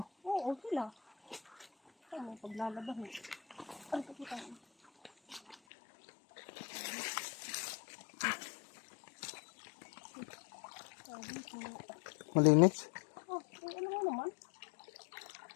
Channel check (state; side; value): drops out; right; at 5.6 s